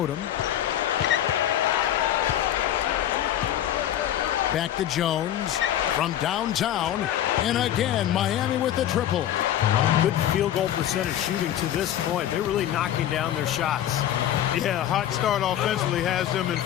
Back to Jones from downtown. And again, Miami with the triple. Good field goal percentage shooting to this point. They're really knocking down their shots. Yeah, hot start offensively has them in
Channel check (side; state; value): right; quieter; 11.5 dB